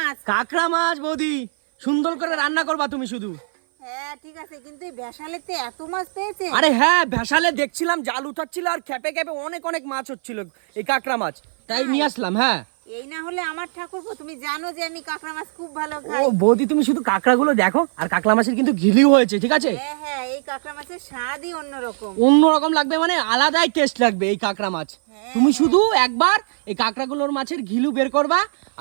কাঁকড়া মাছ বৌদি, সুন্দর করে রান্না করবা তুমি শুধু। হ্যাঁ ঠিক আছে, কিন্তু এই বেশালেতে এত মাছ পেয়েছে? আরে হ্যাঁ, ভ্যাসালে দেখছিলাম জাল উঠাচ্ছিল আর খেপে খেপে অনেক অনেক মাছ হচ্ছিল, এই কাঁকড়া মাছ, তাই নিয়ে আসলাম। হ্যাঁ, এই না হলে আমার ঠাকুরপো, তুমি জানো যে আমি কাঁকড়া মাছ খুব ভালো ও খাই। বৌদি, তুমি শুধু কাঁকড়াগুলো দেখো, আর কাঁকড়া মাছের কিন্তু ঘিলিও হয়েছে, ঠিক আছে? হ্যাঁ হ্যাঁ, এই কাঁকড়া মাছের স্বাদই অন্যরকম। অন্যরকম লাগবে, মানে আলাদাই টেস্ট লাগবে এই কাঁকড়া মাছ। তুমি শুধু একবার এই কাঁকড়াগুলোর মাছের ঘিলু বের করবা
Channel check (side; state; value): left; silent; 56 dB below the other